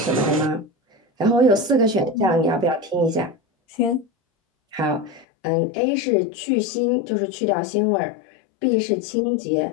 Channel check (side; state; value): right; drops out; at 5.2 s